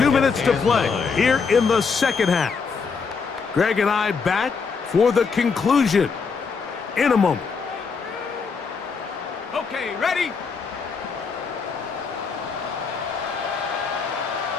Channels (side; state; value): right; quieter; 5.3 dB